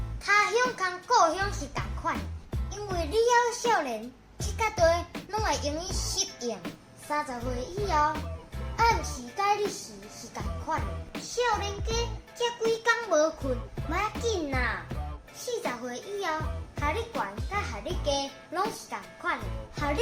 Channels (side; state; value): both; identical; correlation 1.00